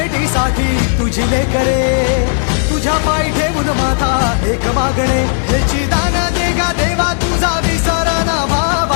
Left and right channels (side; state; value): right; silent; digital silence